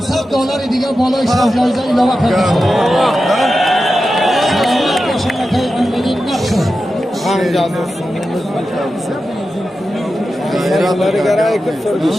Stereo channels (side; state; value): both; normal; correlation 0.91